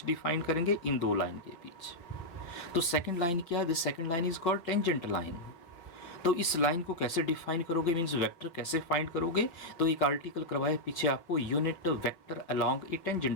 डिफाइन करेंगे? इन दो लाइन के बीच। तो सेकंड लाइन क्या है? This second line is called tangent line. तो इस लाइन को कैसे डिफाइन करोगे, मीन्स वेक्टर कैसे फाइंड करोगे? तो एक आर्टिकल करवाया पीछे आपको, यूनिट वेक्टर अलोंग ए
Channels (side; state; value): right; late; 5.8 ms